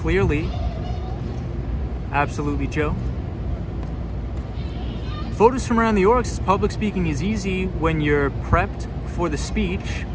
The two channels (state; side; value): identical; both; correlation 1.00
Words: Absolutely, Joe. Photos from around the York says, public speaking is easy when you're prepped for the speech.